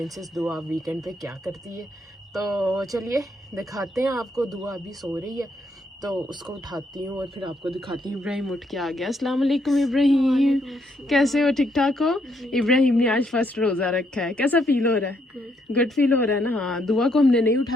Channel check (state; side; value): normal; both; correlation 0.74